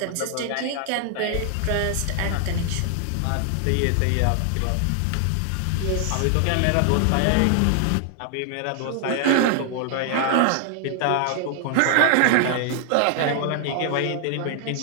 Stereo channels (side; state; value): both; different; correlation 0.00